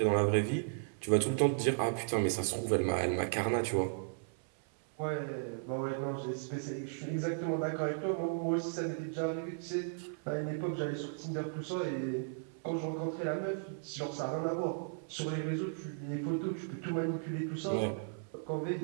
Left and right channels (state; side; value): silent; left; 54 dB below the other